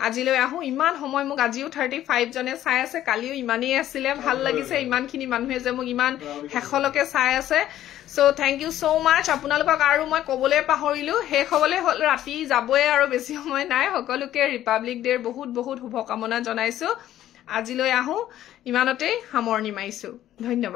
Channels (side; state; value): right; quieter; 12.6 dB